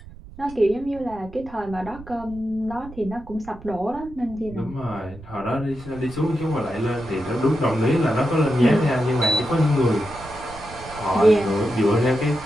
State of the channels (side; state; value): right; noise; rumble, 18 dB below the sound